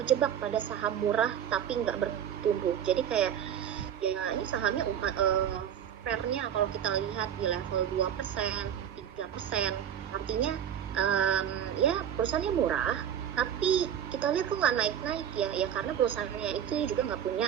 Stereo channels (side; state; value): left; quieter; 9.4 dB